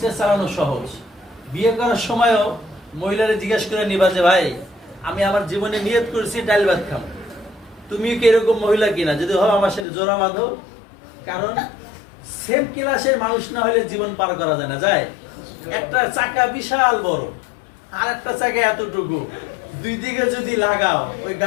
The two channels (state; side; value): drops out; right; at 9.9 s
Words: চালানো সহজ। বিয়ে করার সময়ও মহিলারে জিজ্ঞেস করে নিবা যে ভাই আমি আমার জীবনে নিয়ত করেছি ডাল ভাত খাবো, তুমি কি এরকম মহিলা কিনা? যদি হয় আমার সাথে জোড়া বাঁধো। কারণ সেম ক্লাসের মানুষ না হলে জীবন পার করা যায় না। যায় একটা চাকা বিশাল বড়, আর একটা চাকা এতটুকু, দুই দিকে যদি লাগাও ওই